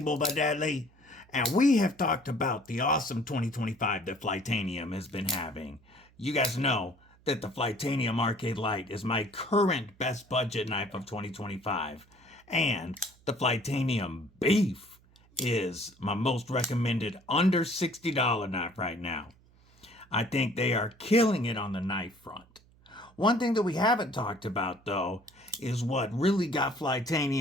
by Deadly. And we have talked about the awesome 2025 that Flytanium has been having. You guys know that the Flytanium Arcade Light is my current best budget knife of 2025. And the Flytanium Beef is my most recommended under $60 knife right now. I think they are killing it on the knife front. One thing that we haven't talked about, though, is what really got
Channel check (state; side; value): noise; right; hum, 29 dB below the sound